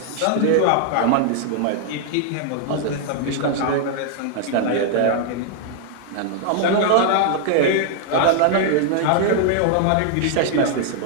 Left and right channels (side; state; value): both; different; correlation 0.00